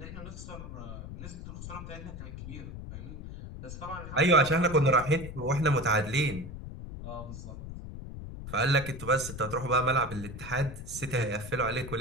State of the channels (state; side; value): noise; left; rumble, 10 dB below the sound